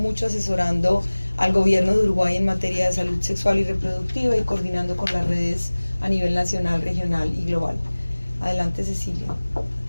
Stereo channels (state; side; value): inverted; both; correlation -1.00